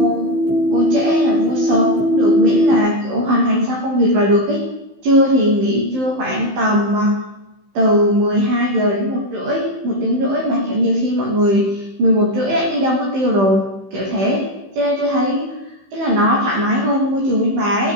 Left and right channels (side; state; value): left; late; 15 ms